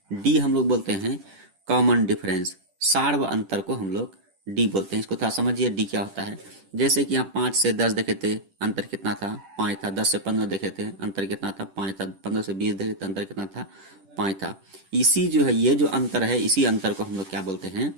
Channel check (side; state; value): left; late; 10 ms